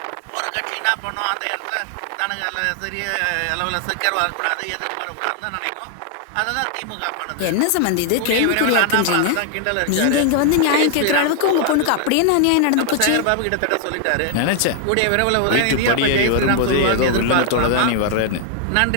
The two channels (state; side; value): different; both; correlation 0.00